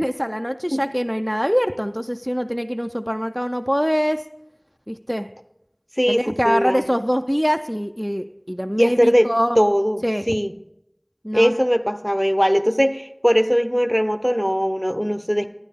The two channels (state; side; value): identical; both; correlation 1.00